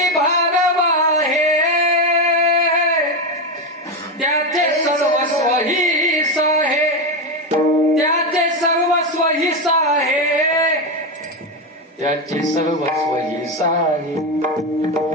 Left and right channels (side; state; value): both; normal; correlation 0.12